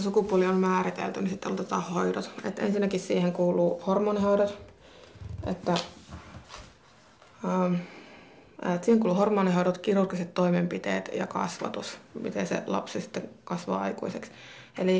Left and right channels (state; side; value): identical; both; correlation 1.00